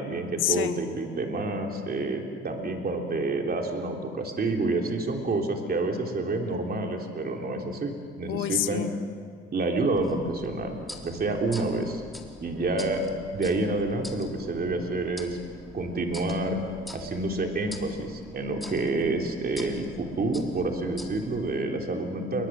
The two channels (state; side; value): normal; both; correlation 0.43